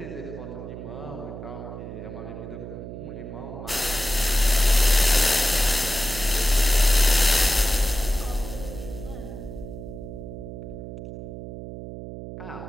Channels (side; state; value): right; noise; hum, 10 dB below the sound